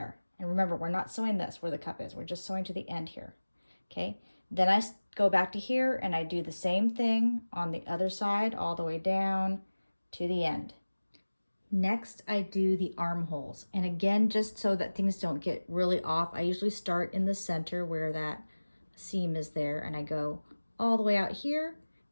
And remember, we're not sewing this where the cup is. We're just sewing to the end here, okay? Then I go back to here, and I do the same thing on the other side, all the way down to the end. Next, I do the armholes. And again, just so that things don't get really off, I usually start in the center where that seam is there, and I go all the way out here,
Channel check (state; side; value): inverted; both; correlation -1.00